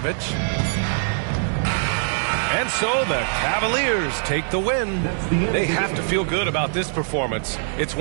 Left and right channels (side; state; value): left; silent; digital silence